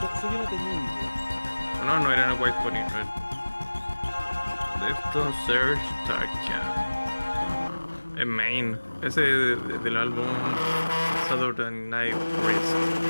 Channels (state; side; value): inverted; both; correlation -1.00